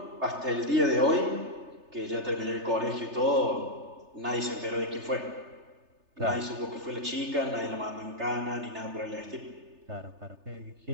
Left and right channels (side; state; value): left; late; 3.3 ms